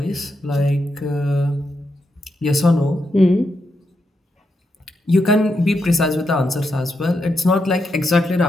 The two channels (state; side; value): normal; both; correlation 0.83